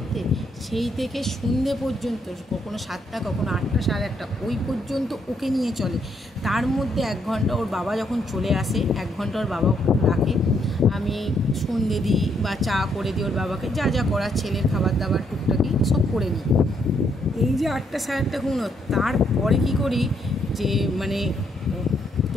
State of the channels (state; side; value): normal; both; correlation 0.74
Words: সেই থেকে সন্ধে পর্যন্ত, কখনো 7টা, কখনো 8টা, 8:30, ওই পর্যন্ত ওকে নিয়ে চলে। তার মধ্যে 1 ঘন্টা ওর বাবা যখন চলে আসে, 1 ঘন্টা ওর বাবা রাখে, আমি সন্ধে দিই বা চা করে দিই ওর বাবাকে, যা যা করার, ছেলের খাবার দাবার টুকটাকি সব করে নিই। এই যে 8টা 8:30 ঘুমো, তারপরে কী করি যে মানে